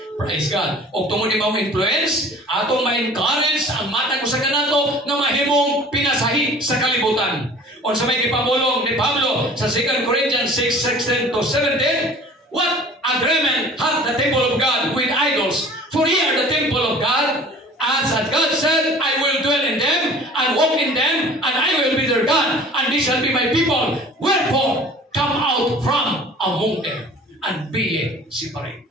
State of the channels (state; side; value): normal; both; correlation 0.46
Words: Praise God. O tungod ni mga influence, atong ma-encourage ang mata ko sa kanato na mahimong pinasahi sa kalibutan. O sa may ipamulong ni Pablo sa 2 Corinthians 6:16-17, what agreement hath the temple of God with idols? For ye are the temple of God, as God said, I will dwell in them and walk in them, and I will be their God, and they shall be my people. Wherefore, come out from among them, and be ye separate.